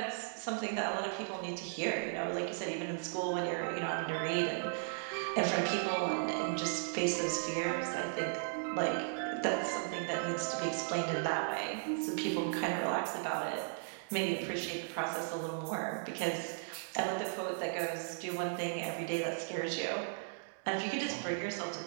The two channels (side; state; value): left; silent; digital silence